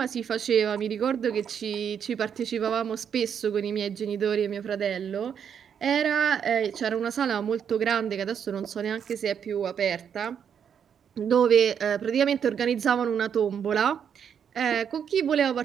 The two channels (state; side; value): quieter; left; 7.9 dB